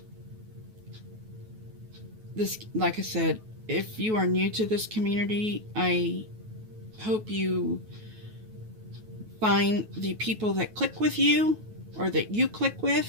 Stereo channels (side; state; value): left; late; 9.3 ms